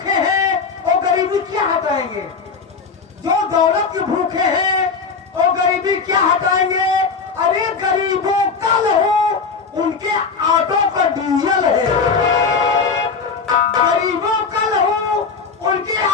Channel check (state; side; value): quieter; right; 5.1 dB